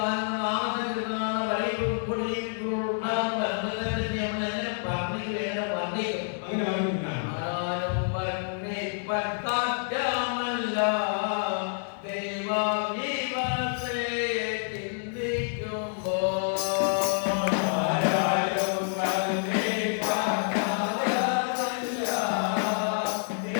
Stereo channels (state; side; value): silent; right; digital silence